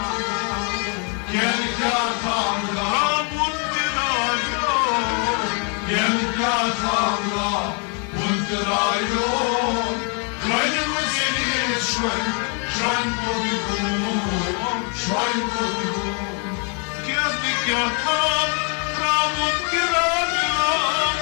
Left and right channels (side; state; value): right; quieter; 38.2 dB